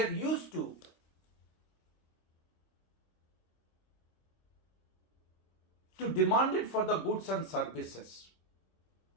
are used to demand it for the goods and services,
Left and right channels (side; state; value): right; late; 26 ms